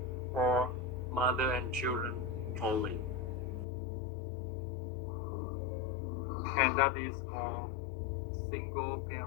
or mother and children only. And that is called single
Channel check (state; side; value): drops out; right; at 3.7 s